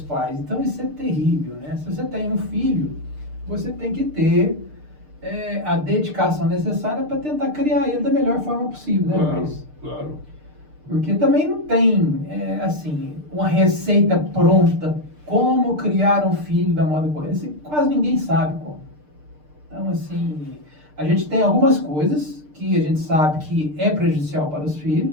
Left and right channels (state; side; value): late; left; 6.7 ms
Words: Então isso é terrível, né? Se você tem um filho, você tem que ter a dedicação necessária para tentar criar ele da melhor forma possível, né, Claro, Luiz? claro. Porque também não tem, assim, uma receita pronta como criar um filho da moda correta. Quase ninguém sabe como. Então, assim, a gente tem algumas coisas que a gente sabe que é prejudicial para os